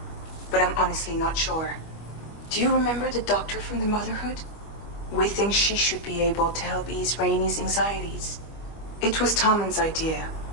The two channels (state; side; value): late; right; 25 ms